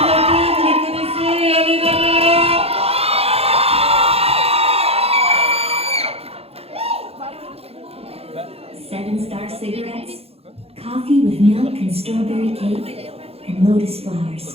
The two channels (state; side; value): late; left; 0.29 ms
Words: Seven Star Cigarettes, coffee with milk and strawberry cake, and lotus